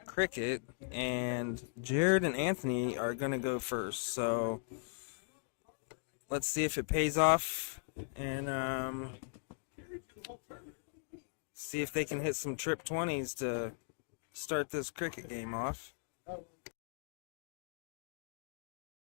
cricket, and Jared and Anthony are going to go first. So let's see if it pays off, and see if they can hit some trip 20s to start this cricket game off.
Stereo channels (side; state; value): right; silent; digital silence